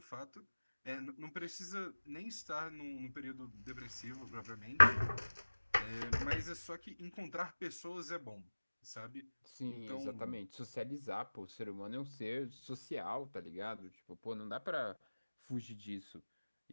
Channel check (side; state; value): both; inverted; correlation -1.00